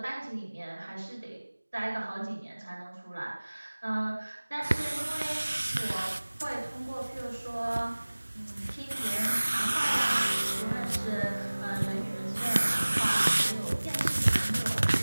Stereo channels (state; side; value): inverted; both; correlation -1.00